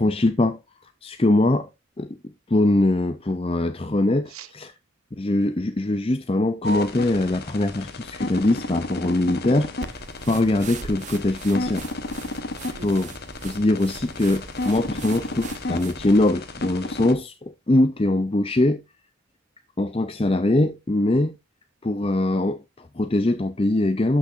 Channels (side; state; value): both; normal; correlation 0.78